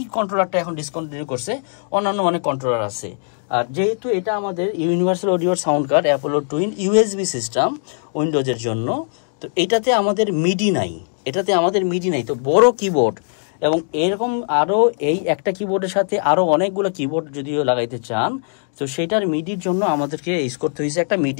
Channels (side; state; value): right; silent; 59 dB below the other